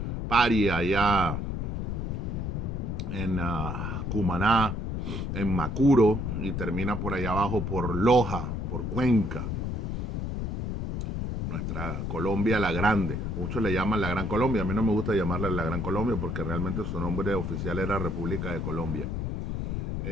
Paria, allá en Cumaná, en Macuro, y termina por allá abajo por Loja, por Cuenca, nuestra Colombia la Grande. Muchos le llaman la Gran Colombia, a mí no me gusta llamarla la Gran Colombia porque realmente su nombre oficial era República de Colombia.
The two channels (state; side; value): noise; left; rumble, 3 dB below the sound